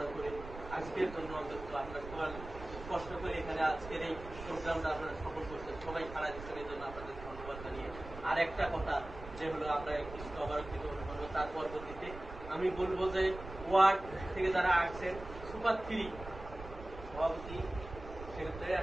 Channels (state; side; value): noise; right; rumble, 13 dB below the sound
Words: করে আজকের জন্য অন্তত আপনার সবাই কষ্ট করে এখানে আজকের এই প্রোগ্রামটা আপনারা সফল করছেন, সবাই খাড়া দিচ্ছেন, এই জন্য আপনাদের ধন্যবাদ জানিয়ে আর একটা কথা যে হলো আমরা কিছু অবারক্ষিত করবো, তার পরবর্তীতে আমি বলবো যে ওয়ার্ড থেকে যারা আসছেন সুপার 3 সভাপতি সেক্ষেত্রে